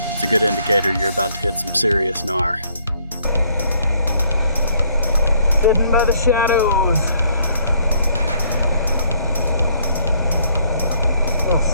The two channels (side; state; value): both; inverted; correlation -0.66